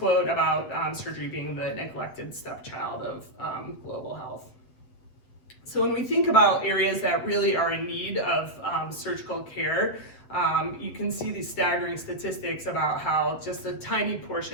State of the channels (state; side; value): late; right; 7.7 ms